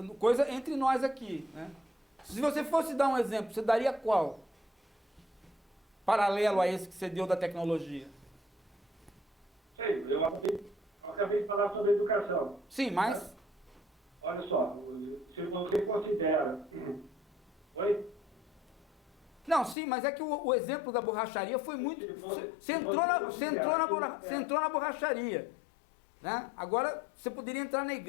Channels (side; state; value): right; drops out; at 19.8 s